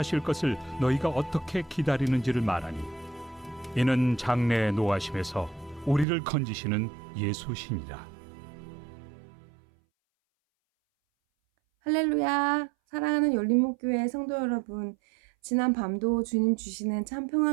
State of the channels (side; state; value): left; drops out; at 6.1 s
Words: 것을 너희가 어떻게 기다리는지를 말하니, 이는 장래의 노하심에서 우리를 건지시는 예수시니라. 할렐루야! 사랑하는 열린목교회 성도 여러분, 지난 밤도 주님 주시는 참